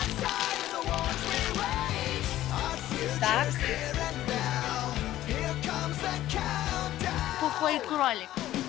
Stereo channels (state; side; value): quieter; right; 14.0 dB